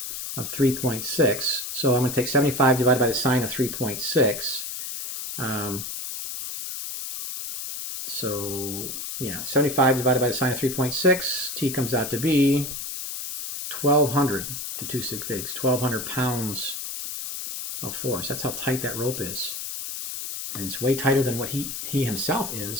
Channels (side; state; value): left; noise; hiss, 5 dB below the sound